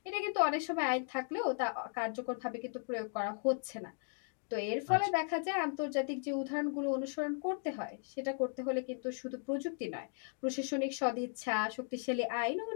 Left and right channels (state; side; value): silent; right; 53 dB below the other